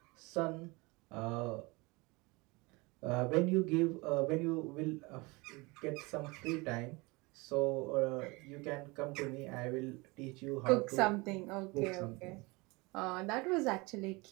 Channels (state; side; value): quieter; left; 25.4 dB